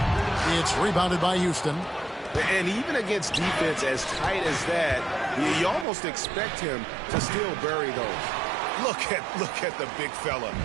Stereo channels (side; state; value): left; drops out; at 5.9 s